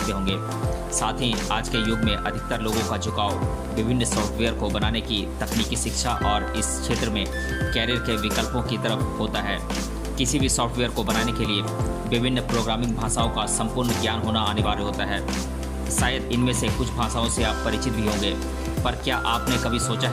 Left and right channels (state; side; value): identical; both; correlation 1.00